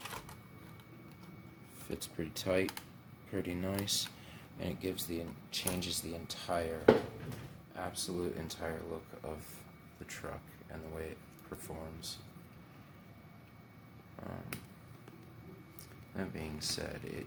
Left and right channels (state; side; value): identical; both; correlation 1.00